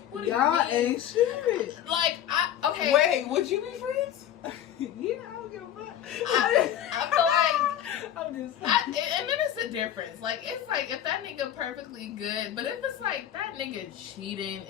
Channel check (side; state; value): right; quieter; 10.7 dB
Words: What do Y'all you mean? ain't shit. Like, okay. Wait, would you be friends? Yeah, I don't give a fuck. I feel like I'm just and then it's a difference. Like, it's like if that nigga perfectly good, but if it's like that nigga cheating